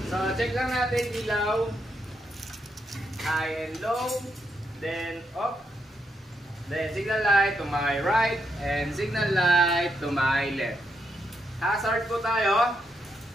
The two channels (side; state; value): both; normal; correlation 0.80